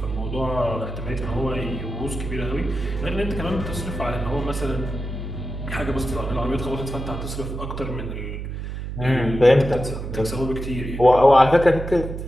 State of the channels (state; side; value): noise; right; hum, 6 dB below the sound